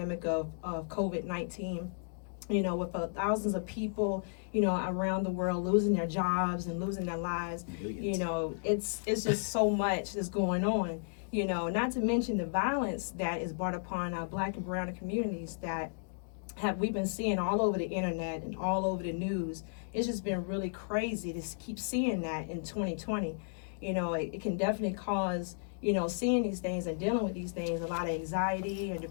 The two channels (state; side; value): silent; right; digital silence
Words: of COVID-19. With thousands of people, around the world losing their jobs and losing their lives, it's just so much that's going on. Not to mention the violence that is brought upon our Black and brown communities that we've been seeing all over the internet and all over the news. It's just been really crazy to keep seeing that in 2020. It can definitely cause, seeing these things and dealing with these things, a lot of anxiety and